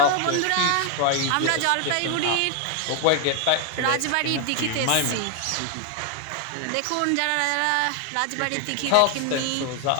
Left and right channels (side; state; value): both; different; correlation 0.01